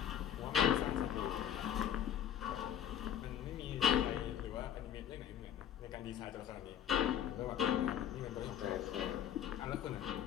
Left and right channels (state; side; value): quieter; right; 9.7 dB